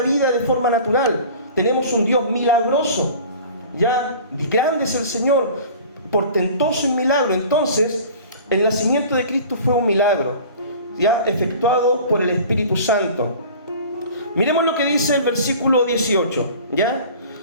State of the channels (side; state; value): both; inverted; correlation -0.43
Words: vida de forma natural. Tenemos un Dios milagroso, ¿ya? Grande es el Señor, portentoso en milagro. Entonces, el nacimiento de Cristo fue un milagro, ¿ya?, efectuado por el Espíritu Santo. Miremos lo que dice el versículo 18, ¿ya?